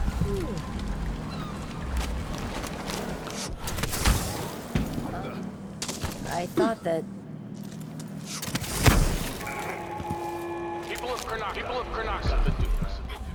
thought that... People of Karnak have been doing this.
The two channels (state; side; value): identical; both; correlation 1.00